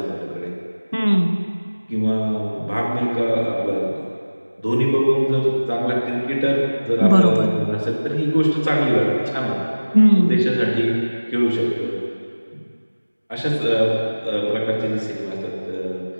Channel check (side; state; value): both; inverted; correlation -1.00